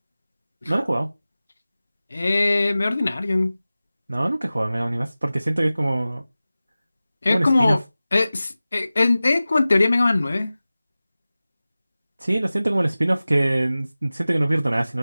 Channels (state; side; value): inverted; both; correlation -0.97